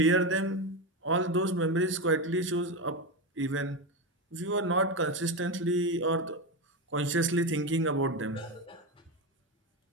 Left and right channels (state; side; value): normal; both; correlation 0.15